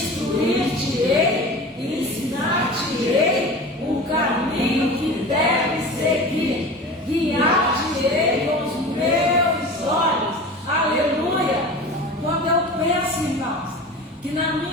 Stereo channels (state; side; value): normal; both; correlation 0.35